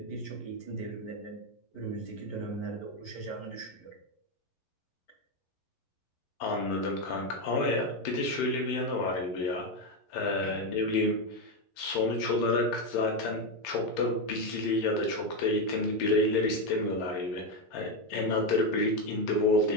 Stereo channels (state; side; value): late; right; 11 ms